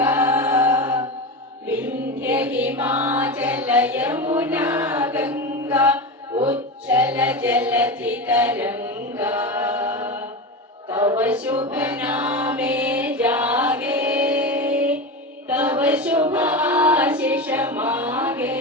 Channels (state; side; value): normal; both; correlation 0.22